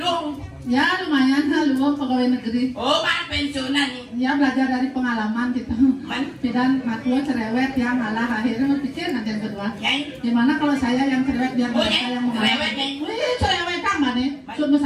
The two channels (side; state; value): both; identical; correlation 1.00